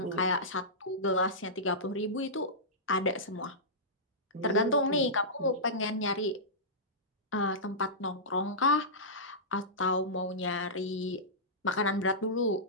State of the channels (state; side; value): normal; both; correlation -0.16